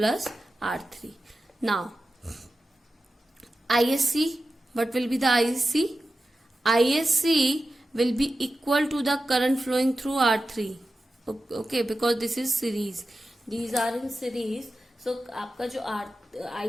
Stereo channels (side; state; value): both; normal; correlation 0.92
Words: R3. Now ISC, what will be the ISC? ISC will be equal to the current flowing through R3. Okay, because this is series, these are in series, so आपका जो